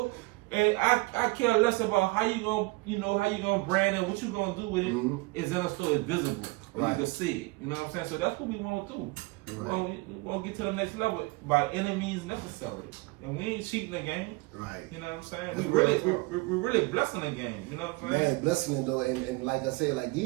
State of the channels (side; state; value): left; quieter; 24.4 dB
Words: And I care less about how you gonna brand it, what you gonna do with it. Is in a store, it's visible, you can see it. You know what I'm saying? So that's what we want to do. We want to get to the next level by any means necessary, and we ain't cheating the game. Right. You know what I'm saying? We're really blessing the game. You know what I'm saying? Man, blessing it though, and like I said, like